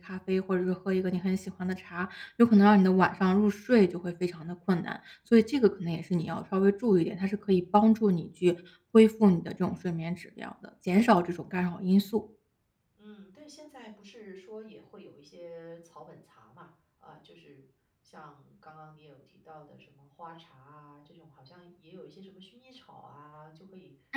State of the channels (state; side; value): identical; both; correlation 1.00